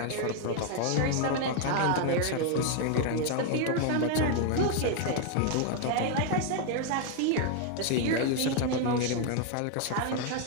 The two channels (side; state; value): both; different; correlation 0.01